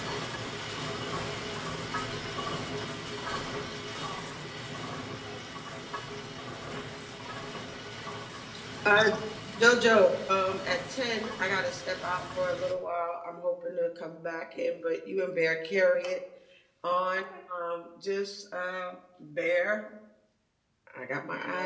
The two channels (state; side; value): identical; both; correlation 1.00